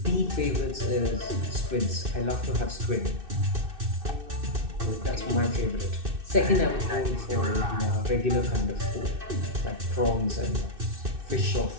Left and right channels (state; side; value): late; left; 2.6 ms